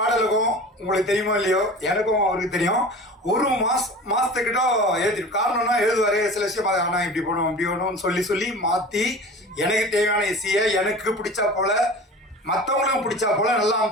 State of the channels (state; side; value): normal; both; correlation 0.37